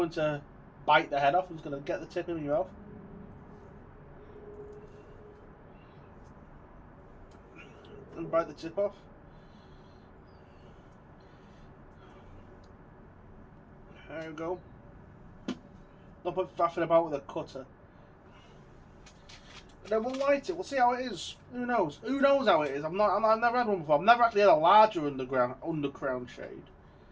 to bite the head off. I'm just going to get the tip in your mouth. And bite the tip off. There you go. Don't put faffing about with a cutter. And then we'll light it. We'll see how it is. Who knows? Who knows how it is? I've never had one before. I've never actually had a larger Undercrown shade.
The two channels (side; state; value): both; identical; correlation 1.00